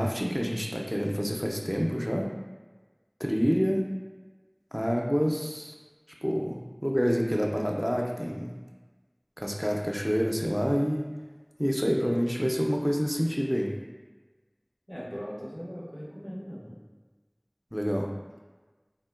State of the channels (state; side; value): identical; both; correlation 1.00